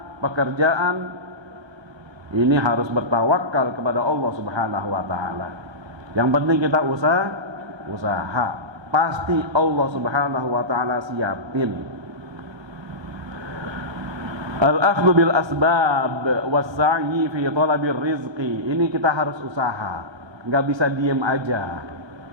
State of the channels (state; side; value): late; left; 1.3 ms